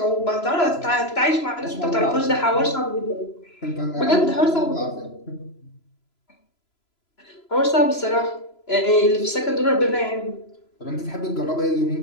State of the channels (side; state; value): right; late; 3.0 ms